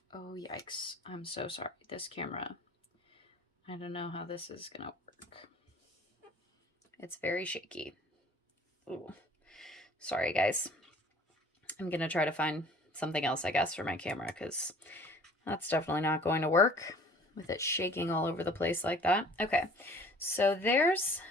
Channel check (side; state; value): both; normal; correlation 0.50